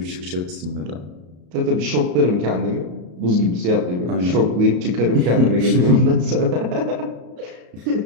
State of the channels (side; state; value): left; late; 34 ms